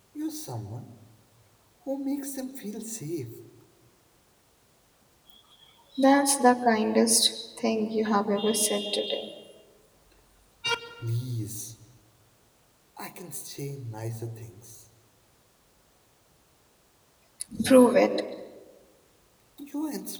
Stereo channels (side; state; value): both; identical; correlation 1.00